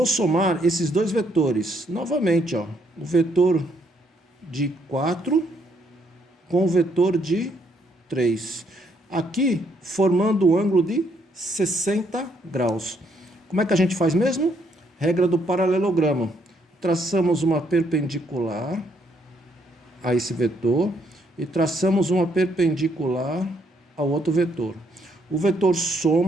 somar esses dois vetores. Novamente, ó, o vetor de 4 com o vetor de 3. Aqui, formando um ângulo de 60 graus. Como é que a gente faz mesmo? Regra do paralelogramo. Traçamos uma perpendicular a esse vetor e traçamos uma perpendicular ao outro vetor. O vetor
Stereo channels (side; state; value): both; normal; correlation 0.71